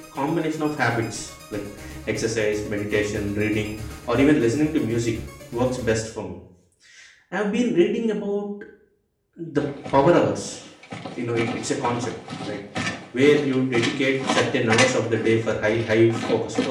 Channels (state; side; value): identical; both; correlation 1.00